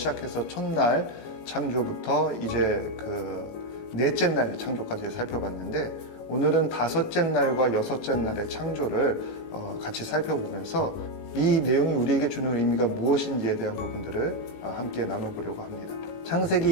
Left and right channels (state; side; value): late; right; 18 ms